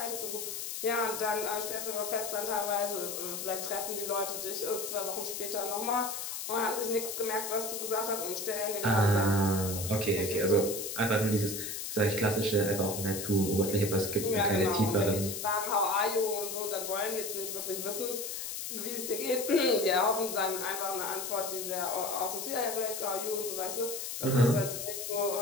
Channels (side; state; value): left; noise; hiss, 5 dB below the sound